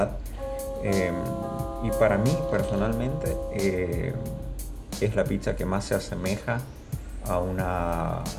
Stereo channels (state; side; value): identical; both; correlation 1.00